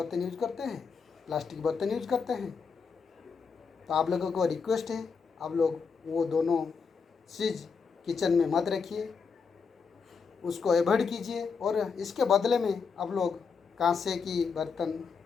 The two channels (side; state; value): right; quieter; 5.5 dB